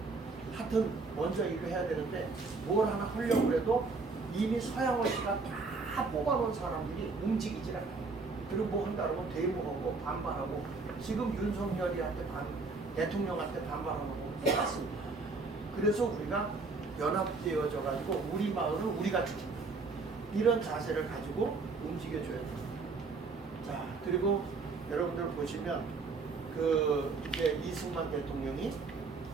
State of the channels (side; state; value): left; quieter; 4.1 dB